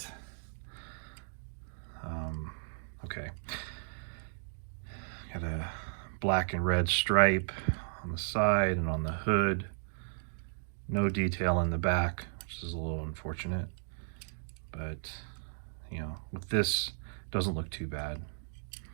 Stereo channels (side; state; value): left; silent; digital silence